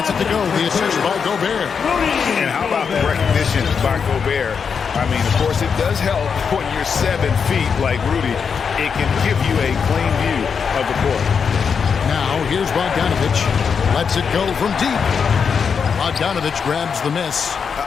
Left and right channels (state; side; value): quieter; right; 6.3 dB